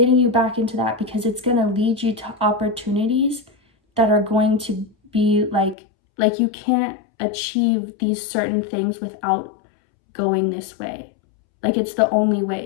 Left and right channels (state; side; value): drops out; right; at 5.8 s